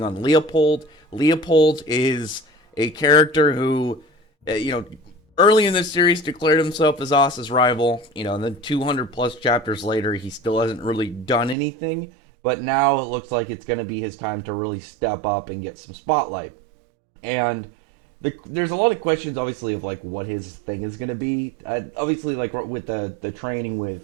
on Leopold. Leopold is a character who, early in this series declared himself as Asa's rival. And then 200 plus chapters later, he still hasn't really done anything. But now it looks like it's going to be his time to really step up and get some spotlight. And there's a lot of questions, obviously, of what his thing is going to be. Obviously, with the training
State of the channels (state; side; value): drops out; left; at 11.6 s